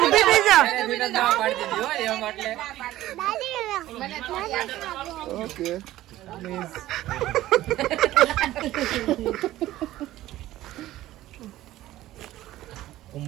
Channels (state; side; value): quieter; left; 15.0 dB